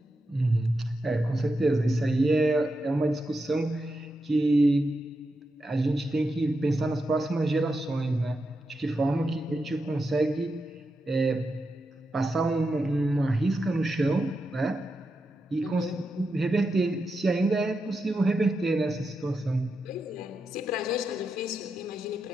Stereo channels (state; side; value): normal; both; correlation 0.87